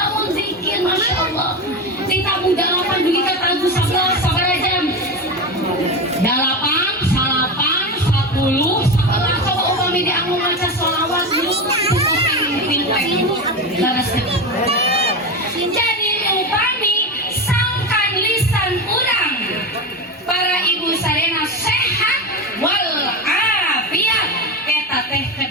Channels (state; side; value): normal; both; correlation 0.19